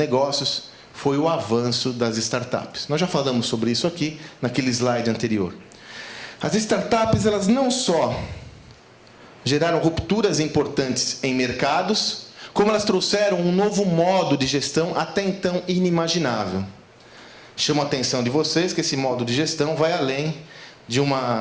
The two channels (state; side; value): identical; both; correlation 1.00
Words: foi o avanço das startups. Nós já falamos sobre isso aqui, naquele slide anterior. As startups, elas não só geraram rupturas importantes em mercados, como elas trouxeram um novo modo de gestão até então inimaginável. Chamo a atenção de vocês que esse modo de gestão vai além de um